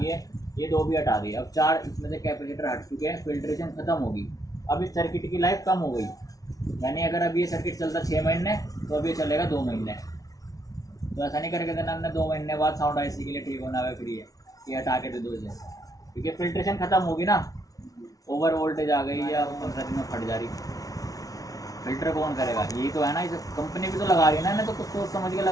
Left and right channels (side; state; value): right; late; 0.18 ms